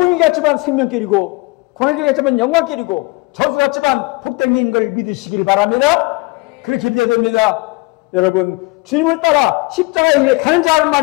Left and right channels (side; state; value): right; quieter; 24.8 dB